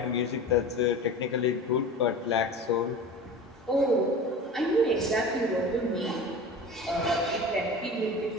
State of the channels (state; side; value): normal; both; correlation 0.34